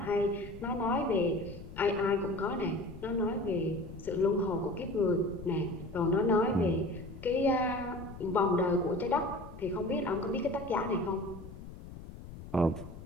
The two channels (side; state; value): left; noise; rumble, 13 dB below the sound